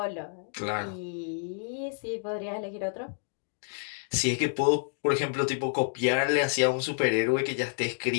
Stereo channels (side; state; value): right; silent; digital silence